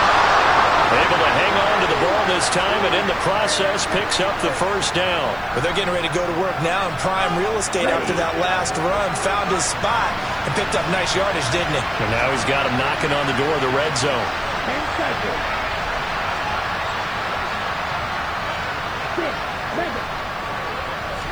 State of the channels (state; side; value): noise; left; hiss, 29 dB below the sound